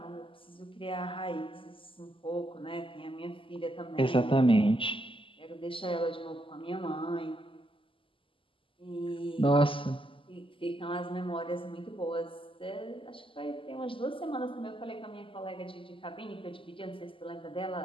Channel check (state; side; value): late; right; 0.25 ms